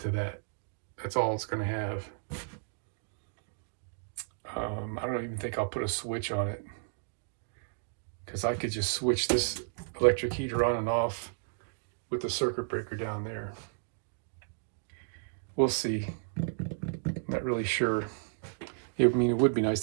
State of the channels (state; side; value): silent; left; digital silence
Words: that. That's all it's going to have. I don't even think I'll put a switch on it, because I could just switch this electric heater on and off with the circuit breaker down there. We'll see. Not really sure. I mean, it would be nice